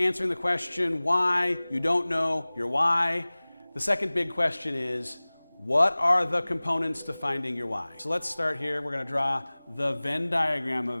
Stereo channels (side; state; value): both; inverted; correlation -1.00